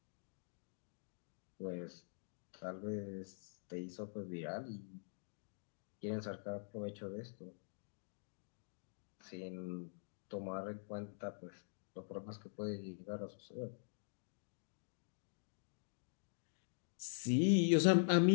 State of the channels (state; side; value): silent; right; digital silence